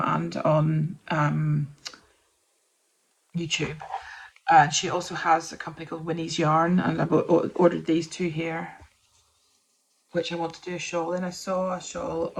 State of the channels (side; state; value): both; identical; correlation 1.00